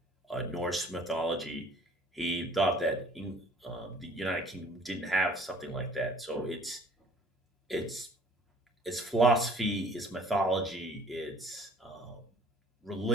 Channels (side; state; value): both; normal; correlation 0.52